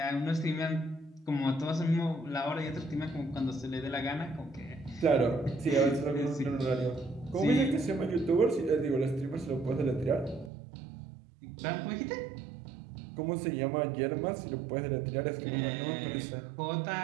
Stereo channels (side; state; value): left; drops out; at 10.5 s